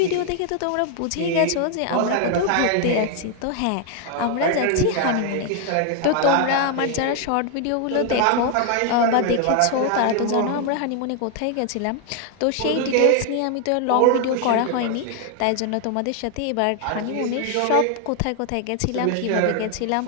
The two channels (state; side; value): different; both; correlation 0.00